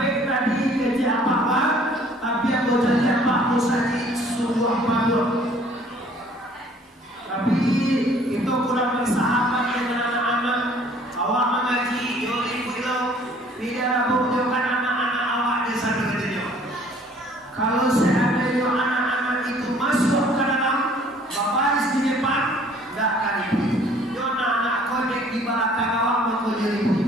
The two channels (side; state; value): both; normal; correlation 0.56